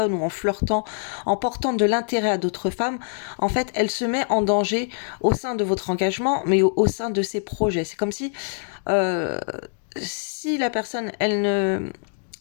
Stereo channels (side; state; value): right; silent; 62 dB below the other